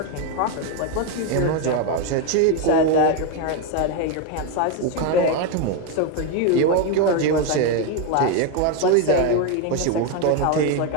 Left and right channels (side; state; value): both; different; correlation 0.02